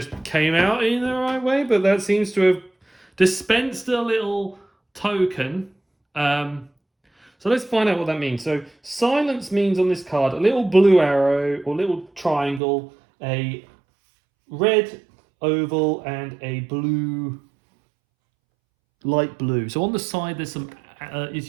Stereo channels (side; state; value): left; drops out; at 12.6 s